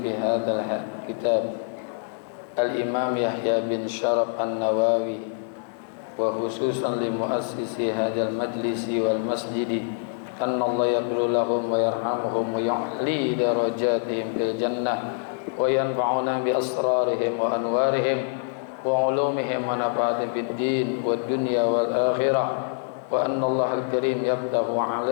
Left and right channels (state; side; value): silent; right; digital silence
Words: hadzal kitab Al-Imam Yahya bin Sharaf An-Nawawi wa khususan li muassisi hadzal majlisi wal masjidi anna Allah yaghfir lahum wa yarhamuhum wa yu'li darajatihim fil jannah wa yanfa'una bi asrarihim wa anwarihim wa ulumihim wa nafa'atihim fid din wad dunya wal akhirah wa anna Allah al-karim yaftahu